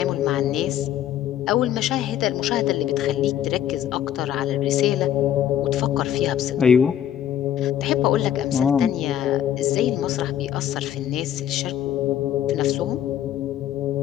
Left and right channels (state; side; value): quieter; right; 10.6 dB